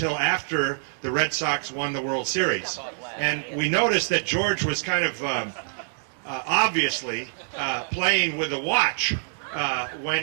after the Red Sox won the World Series. And we noticed that George was kind of obviously playing with a watch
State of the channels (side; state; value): left; silent; digital silence